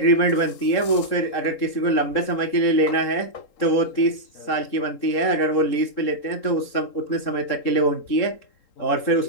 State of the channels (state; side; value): late; right; 3.6 ms